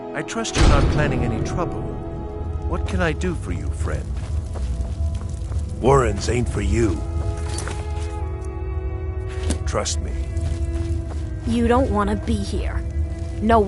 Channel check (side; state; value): both; identical; correlation 1.00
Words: I trust you're not planning any trouble. What can I do for you, friend? Warrens ain't for you. Trust me. You don't want to be here. No